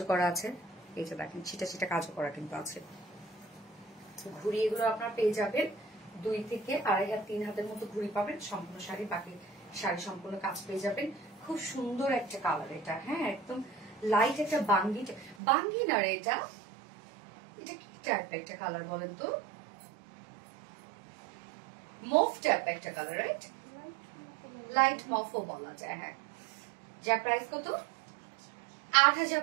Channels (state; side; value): drops out; left; at 15.4 s